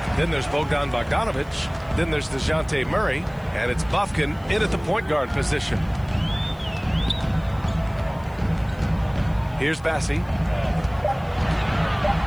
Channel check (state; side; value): noise; left; hiss, 29 dB below the sound